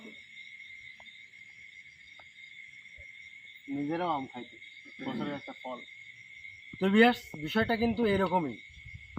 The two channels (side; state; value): both; identical; correlation 1.00